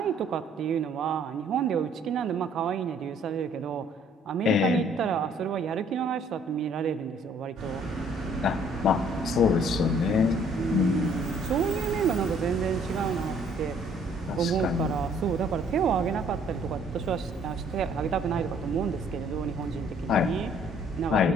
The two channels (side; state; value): both; normal; correlation 0.60